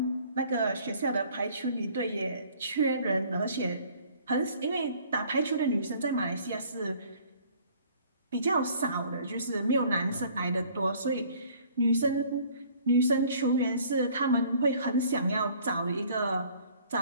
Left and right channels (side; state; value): both; inverted; correlation -0.56